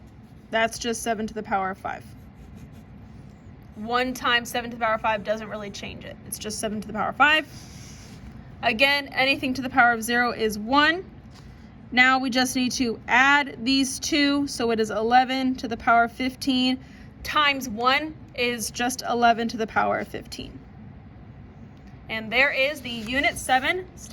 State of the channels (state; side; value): identical; both; correlation 1.00